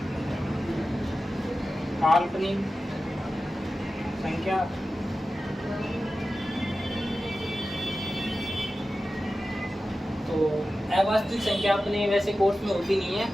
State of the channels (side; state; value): both; normal; correlation 0.94